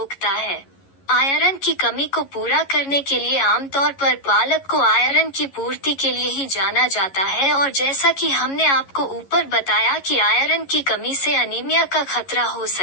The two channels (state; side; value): late; right; 11 ms